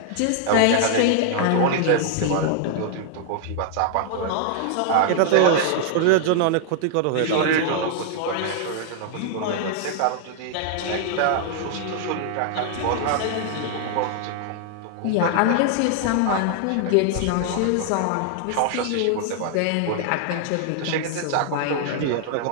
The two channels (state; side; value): different; both; correlation 0.00